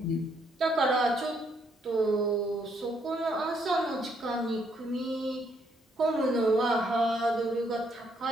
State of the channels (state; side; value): normal; both; correlation 0.72